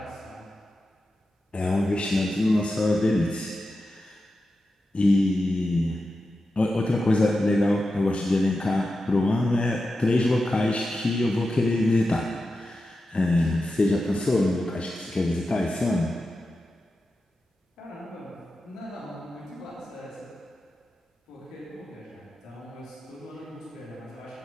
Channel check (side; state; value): both; normal; correlation 0.91